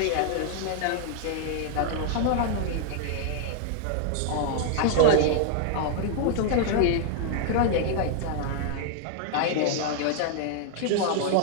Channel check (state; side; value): different; both; correlation 0.00